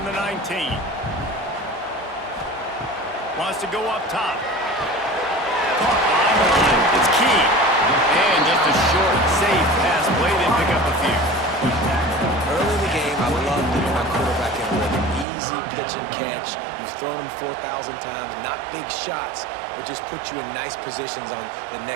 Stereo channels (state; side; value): drops out; left; at 15.2 s